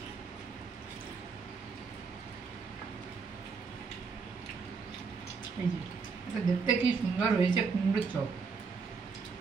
এই যে এটা দেখতে কি সুন্দর হয়েছে, কুমড়োর চপ,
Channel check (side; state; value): left; quieter; 5.1 dB